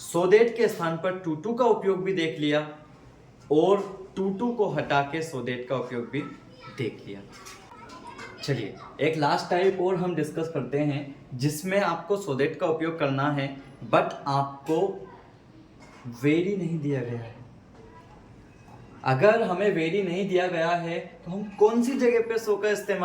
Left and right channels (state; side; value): identical; both; correlation 1.00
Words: दैट के स्थान पर टू टू का उपयोग भी देख लिया और टू टू को हटा के सो दैट का उपयोग भी देख लिया। चलिए एक लास्ट टाइप और हम डिस्कस करते हैं जिसमें आपको सो दैट का उपयोग करना है बट आपको वेरी नहीं दिया गया है। अगर हमें वेरी नहीं दिया गया है तो हम कौन सी जगह पे सो का